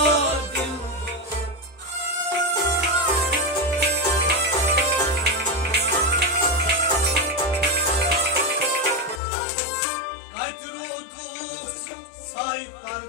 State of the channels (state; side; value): drops out; right; at 9.2 s